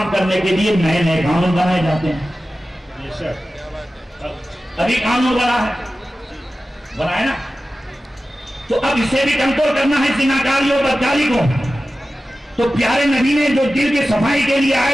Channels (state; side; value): normal; both; correlation 0.95